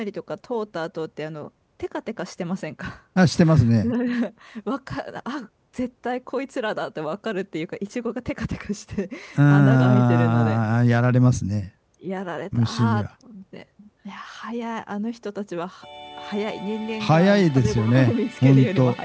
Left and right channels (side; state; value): both; identical; correlation 1.00